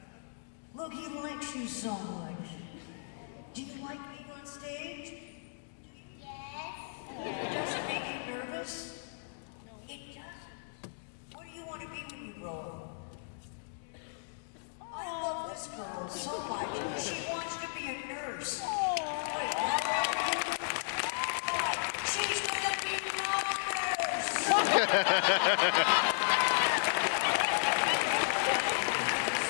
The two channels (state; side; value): silent; right; digital silence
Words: Look, he likes you so much. Do you like being on stage? Yes. Does it make you nervous? It doesn't. What do you want to be when you grow up? I love this girl so much. She wants to be a nurse. Wait, how old are you? She's gonna be a nurse!